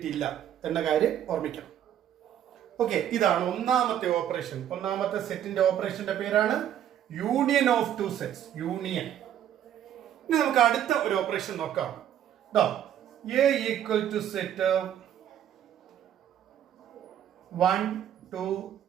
എന്ന കാര്യം ഓർമ്മിക്കണം. ഓക്കെ, ഇതാണ് ഒന്നാമത്തെ ഓപ്പറേഷൻ. ഒന്നാമത്തെ സെറ്റിന്റെ ഓപ്പറേഷന്റെ പേരാണ് union of two sets. Union. ഇനി നമുക്ക് അടുത്ത ഒരു ഓപ്പറേഷൻ നോക്കാം. A equal to set 1 2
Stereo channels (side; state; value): left; quieter; 10.4 dB